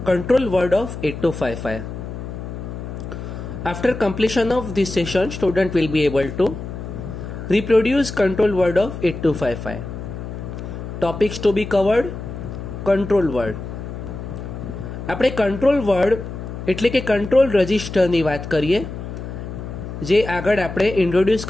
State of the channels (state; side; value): noise; left; hum, 8 dB below the sound